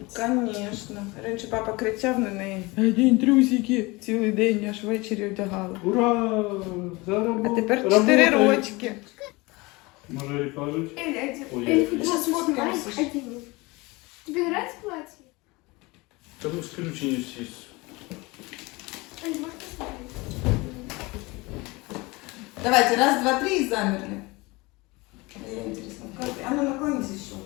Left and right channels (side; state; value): right; quieter; 23.9 dB